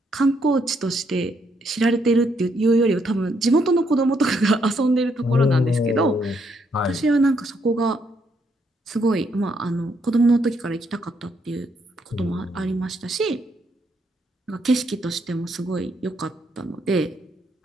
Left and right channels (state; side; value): normal; both; correlation 0.74